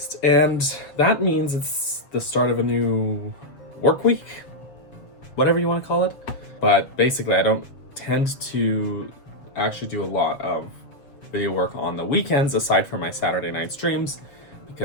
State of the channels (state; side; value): late; right; 7.1 ms